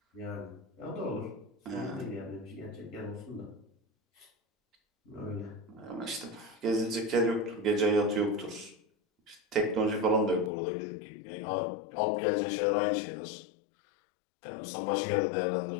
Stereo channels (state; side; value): drops out; right; at 10.5 s